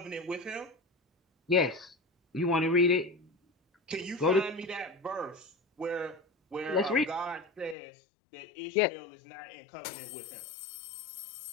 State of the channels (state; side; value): drops out; right; at 7.8 s